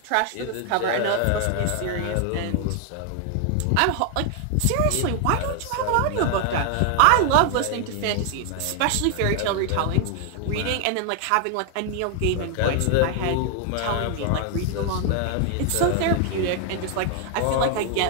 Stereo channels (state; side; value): different; both; correlation 0.00